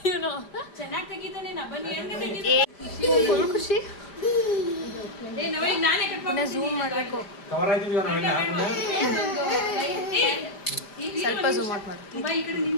ಇವನು. ಚೆನ್ನಾಗಿ ತೆಗಿತಾನೆ ನಾ ಬನ್ನಿ ಎಣ್ಣೆ ತೆಗಿತಾನೆ. ಫುಲ್ ಖುಷಿ. ಏ ನಾವೇ ನಾನೇ ಕಟ್ ಪುನಃ ಝೂಮ್ ಮಾಡಬೇಕು. ಕವರ್ ಆಯ್ತಿದೀವ ನಾವೆಲ್ಲ. ಸ್ವಲ್ಪ ಝೂಮ್ ಔಟ್ ಮಾಡು. ಬಾ ಈ ಕಡೆ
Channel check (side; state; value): right; late; 5.0 ms